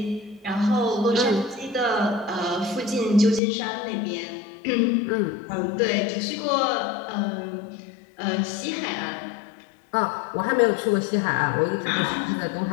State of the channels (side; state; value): right; drops out; at 3.4 s